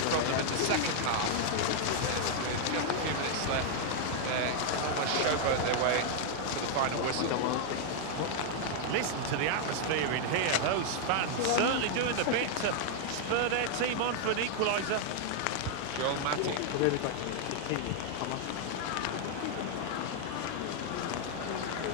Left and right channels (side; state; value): both; different; correlation 0.00